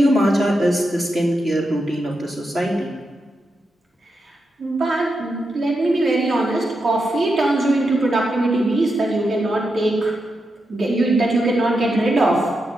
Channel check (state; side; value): normal; both; correlation 0.86